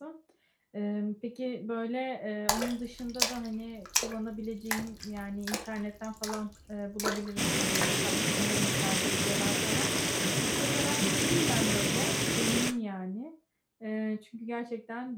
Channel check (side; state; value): both; identical; correlation 1.00